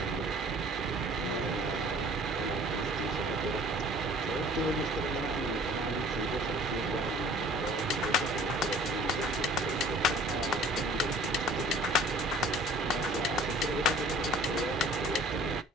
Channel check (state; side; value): normal; both; correlation 0.50